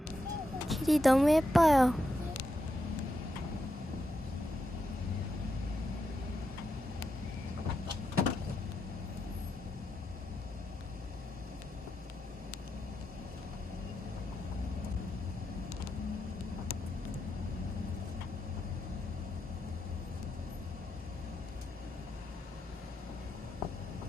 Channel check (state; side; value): normal; both; correlation 0.85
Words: 길이 너무 예뻐요.